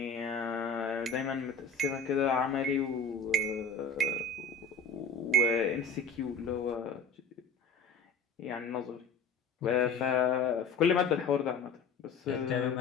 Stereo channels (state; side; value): quieter; right; 3.9 dB